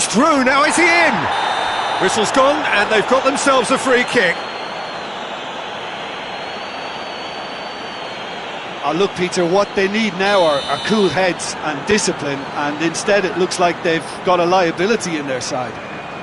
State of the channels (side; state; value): both; identical; correlation 1.00